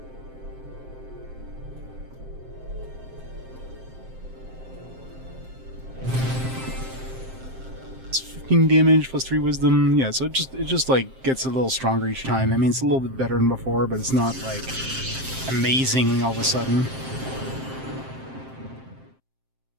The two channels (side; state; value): left; late; 7.6 ms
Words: Damage plus 3 wisdom. Yeah, so it just like gets a little stronger each time. I mean, it's a little bit better than before, but it's not like amazing all of a sudden.